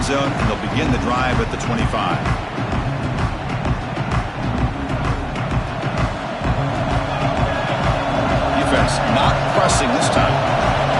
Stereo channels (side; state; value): both; identical; correlation 1.00